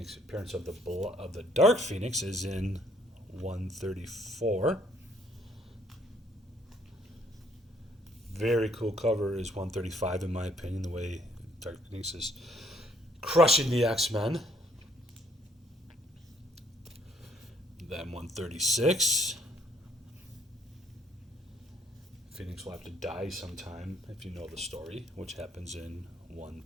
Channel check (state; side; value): normal; both; correlation 0.65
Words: of the Dark Phoenix is in 134. Very cool cover is 135, in my opinion, the way Dark Phoenix is crushing the X-Men. Then 136. Phoenix will have to die sometime if you know the story, which happens in